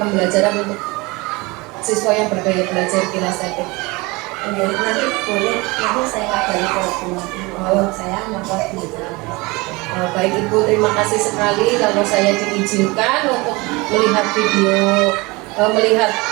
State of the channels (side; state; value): left; quieter; 24.4 dB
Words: untuk siswa yang bergaya belajar kinestetik? Nanti boleh, nanti saya kabari kalau saya membuat pembelajaran. Baik Ibu, terima kasih sekali kalau saya diizinkan untuk melihat video, melihat